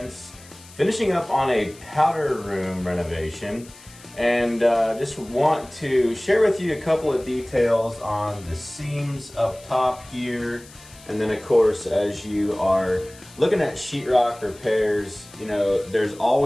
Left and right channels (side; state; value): left; noise; hiss, 22 dB below the sound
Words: finishing up on a powder room renovation, and just want to share with you a couple of details on the seams up top here. And then of course, as you are looking at sheetrock repairs, you know, there's